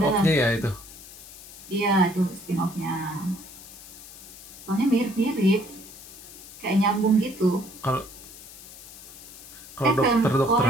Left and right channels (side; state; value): left; noise; hiss, 16 dB below the sound